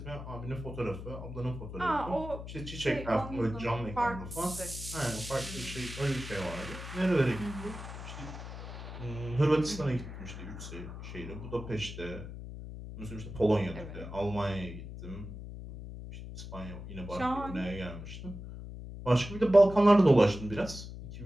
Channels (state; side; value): noise; left; hum, 10 dB below the sound